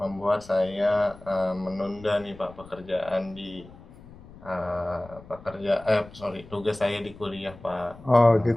saya menunda nih Pak pekerjaan di tugas saya di kuliah Pak. Oh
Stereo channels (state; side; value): noise; left; rumble, 20 dB below the sound